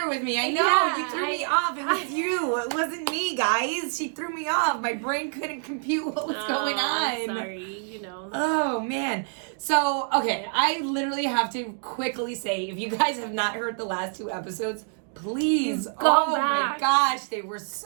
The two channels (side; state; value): left; silent; 60 dB below the other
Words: with me. I know, Yeah, you threw me off. It was you. It wasn't me, guys. She threw me off. My brain couldn't compute what was going on. Sorry, Oh, man. So, okay, I literally have to quickly say, if you guys have not heard the last 2 episodes, please Go my back. gosh, they were